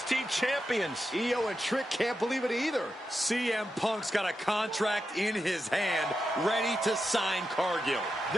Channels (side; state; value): both; normal; correlation 0.88